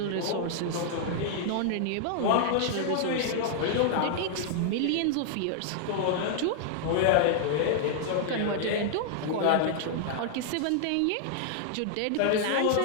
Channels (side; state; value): both; different; correlation -0.01